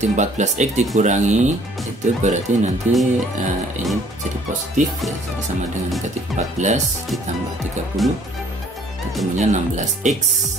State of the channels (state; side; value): normal; both; correlation 0.58